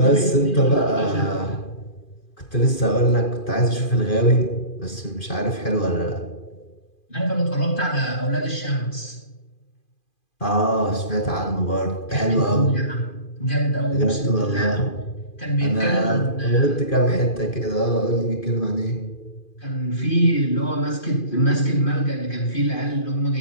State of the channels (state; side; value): late; right; 2.5 ms